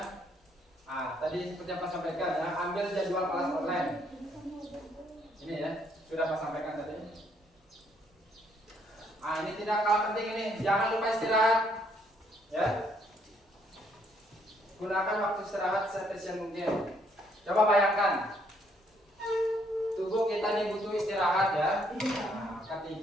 tadi seperti yang Pak sampaikan ya, ambil jadwal kelas online. Ini ya, sudah Pak sampaikan tadi. Ini tidak kalah penting ini, jangan lupa istirahat. Ya. Gunakan waktu istirahat seefisien mungkin. Coba bayangkan, tubuh kita ini butuh istirahat ya. Nah,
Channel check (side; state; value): both; normal; correlation 0.69